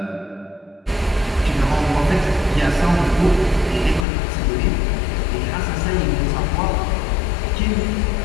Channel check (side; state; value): right; drops out; at 4.0 s